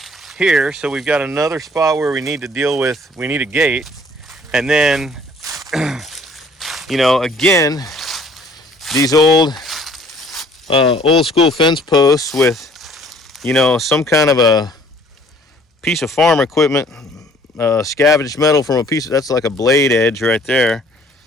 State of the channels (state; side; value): normal; both; correlation 0.57